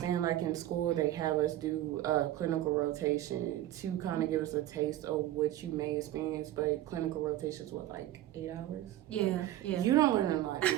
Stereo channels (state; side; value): quieter; left; 13.9 dB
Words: like in school they have us do a clinical rotation to kind of give us a taste of what you may experience, but clinical rotations, what, like 8 hours? Yeah. You don't learn a lot in